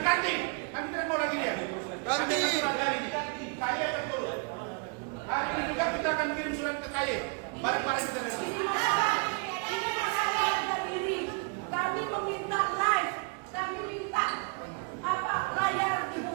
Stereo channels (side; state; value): left; quieter; 35.0 dB